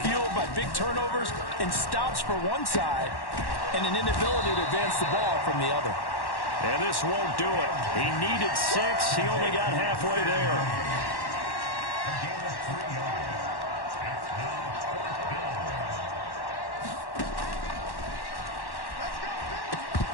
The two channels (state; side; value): late; right; 1.1 ms